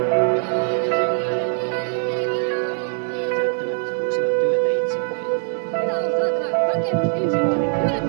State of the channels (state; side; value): silent; left; digital silence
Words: Työttömät huusivat työtä itselleen. Minä olen saatana rakennusinsinööri,